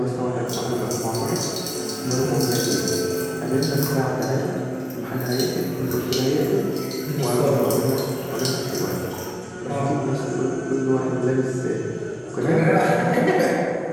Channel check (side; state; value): both; identical; correlation 1.00